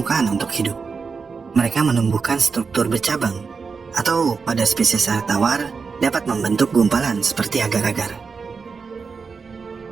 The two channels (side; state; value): left; quieter; 5.1 dB